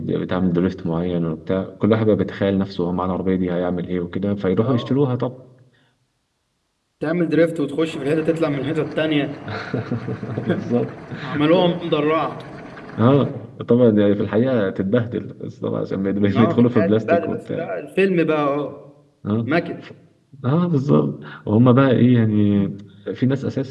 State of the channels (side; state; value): both; identical; correlation 1.00